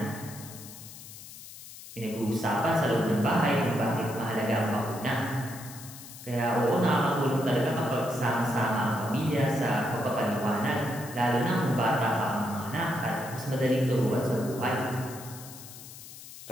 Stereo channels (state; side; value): noise; left; hiss, 15 dB below the sound